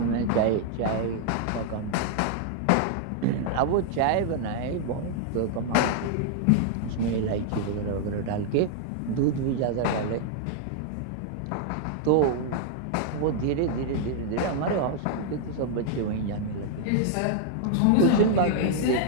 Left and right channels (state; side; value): different; both; correlation -0.01